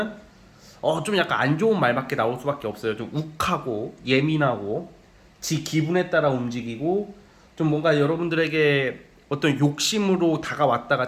좀 약간 안 좋은 말밖에 나올 수밖에 없어요. 좀 욱하고 예민하고 지 기분에 따라 움직이고 좀 뭔가 여러분들에게 어떤 욕심으로 다가왔다가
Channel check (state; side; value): identical; both; correlation 1.00